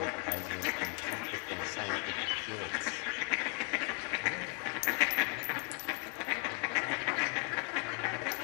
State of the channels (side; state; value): right; quieter; 38.4 dB